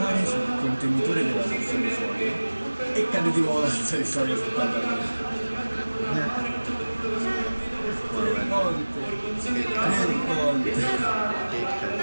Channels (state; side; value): inverted; both; correlation -1.00